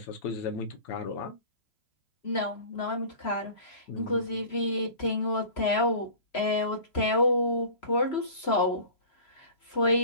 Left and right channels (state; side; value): late; right; 3.0 ms